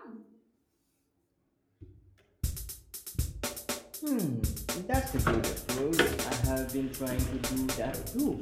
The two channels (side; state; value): both; identical; correlation 1.00